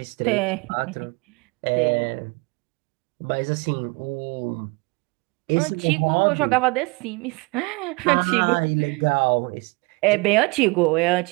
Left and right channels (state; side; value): quieter; left; 27.9 dB